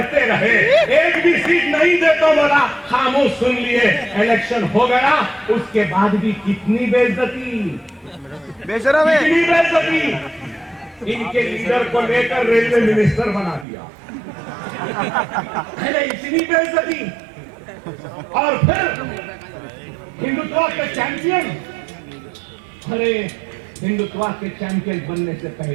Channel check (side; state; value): left; drops out; at 13.7 s